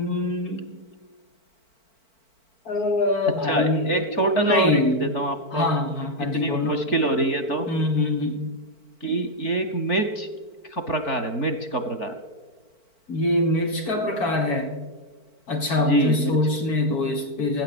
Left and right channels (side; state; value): right; late; 4.5 ms